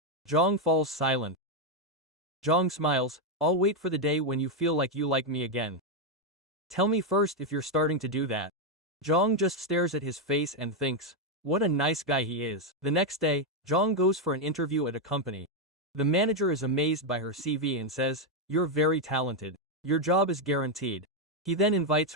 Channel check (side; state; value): both; normal; correlation 0.03